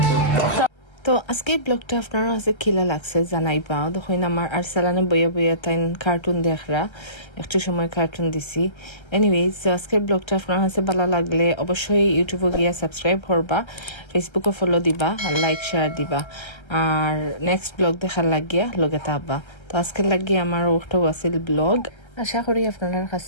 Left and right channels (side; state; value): right; late; 1.3 ms